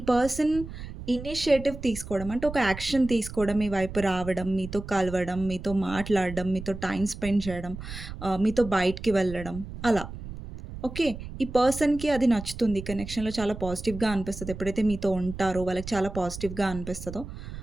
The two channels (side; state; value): right; noise; rumble, 11 dB below the sound